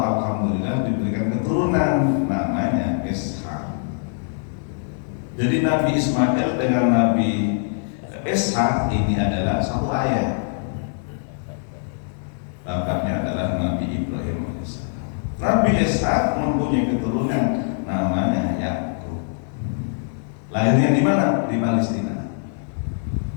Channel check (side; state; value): right; silent; digital silence